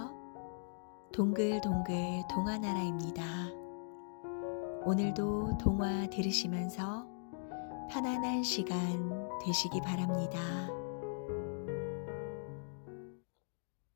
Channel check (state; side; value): silent; right; digital silence